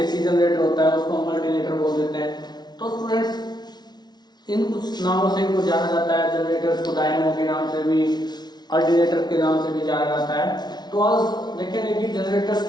जनरेटर होता है, उसको हम अल्टरनेटर बोल देते हैं। तो स्टूडेंट्स, इन कुछ नामों से इनको जाना जाता है। जनरेटर्स को डायनामो के नाम से भी, अल्टरनेटर के नाम से भी जाना जाता है। तो आज देखेंगे कि जनरेटर्स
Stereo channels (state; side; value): late; right; 0.20 ms